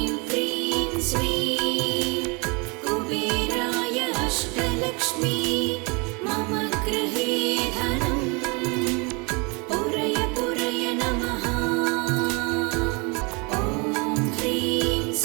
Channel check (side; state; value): left; quieter; 30.2 dB